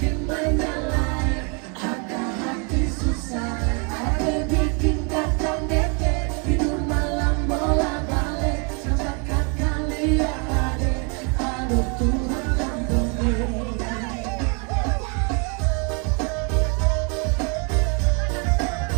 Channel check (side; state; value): left; quieter; 35.2 dB